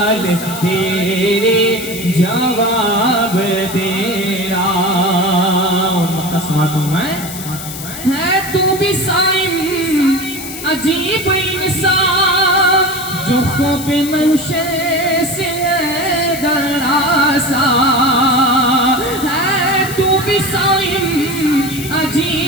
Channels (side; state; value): left; noise; hiss, 10 dB below the sound